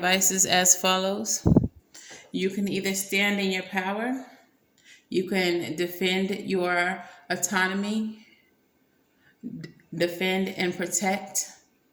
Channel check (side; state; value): both; identical; correlation 1.00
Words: is as follows. You can either stand in your power, you can defend your autonomy, defend and protect